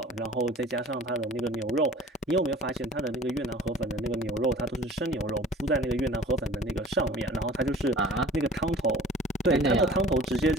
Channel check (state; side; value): normal; both; correlation 0.46